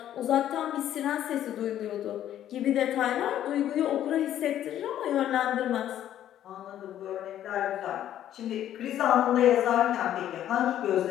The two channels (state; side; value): quieter; right; 11.5 dB